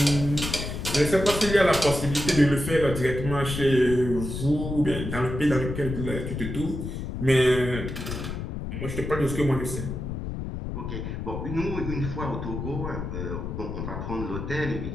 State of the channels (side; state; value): left; noise; rumble, 5 dB below the sound